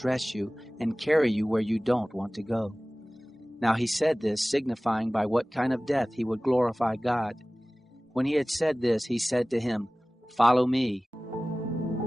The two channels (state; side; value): normal; both; correlation 0.98